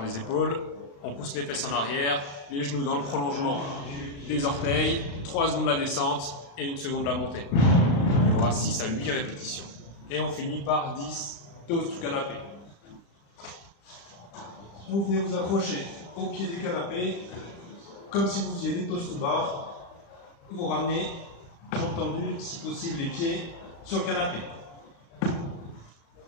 épaules. On pousse les fesses en arrière, les genoux dans le prolongement des orteils, 3 secondes la descente et 1 seconde la montée. Il y aura 6 à 8 répétitions. Et on finit par 10 toasts to canapé. Vous venez vous accrocher au pied du canapé comme si vous faisiez des toast to bar, vous ramenez, jambes tendues, si possible les pieds sur le canapé.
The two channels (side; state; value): right; late; 35 ms